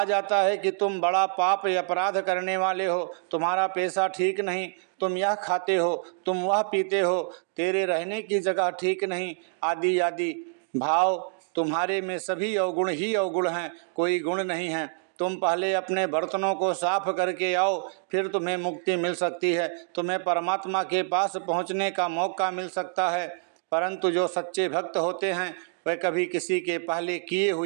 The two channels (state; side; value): silent; left; digital silence